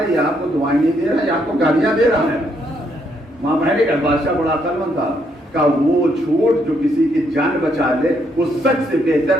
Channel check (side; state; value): both; normal; correlation 0.74